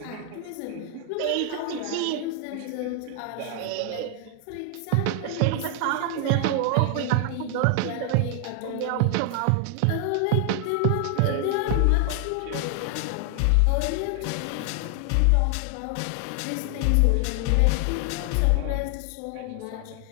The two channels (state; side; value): different; both; correlation 0.00